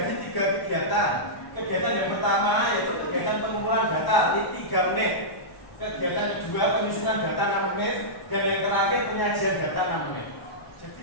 3 kegiatan. Kegiatan yang pertama yaitu kegiatan pengumpulan data di 3 menit. Kegiatan kedua penyusunan data 6 menit, dan yang terakhir penyajian data 6 menit.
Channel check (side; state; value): right; late; 1.1 ms